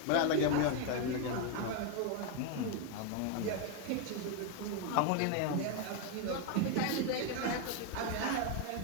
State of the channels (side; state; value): both; different; correlation 0.01